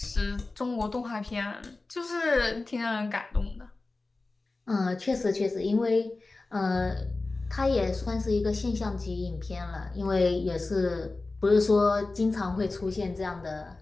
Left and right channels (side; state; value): right; quieter; 3.4 dB